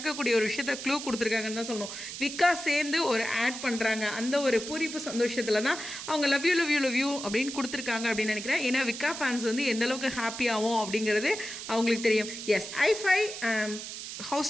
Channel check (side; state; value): right; noise; hiss, 9 dB below the sound